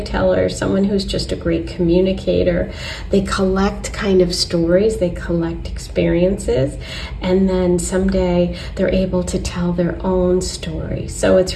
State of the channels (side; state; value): both; identical; correlation 1.00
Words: someone who's just a great communicator. They collect kind of stories, they collect experiences, and then someday they're able to tell their own story. So